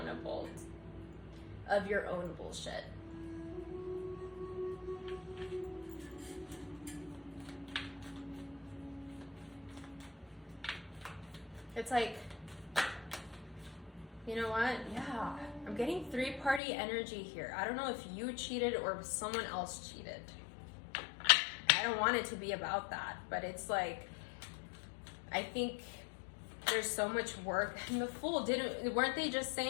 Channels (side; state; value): right; drops out; at 16.6 s